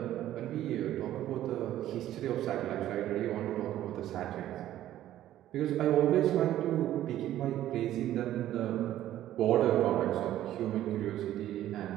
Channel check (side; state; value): left; quieter; 12.9 dB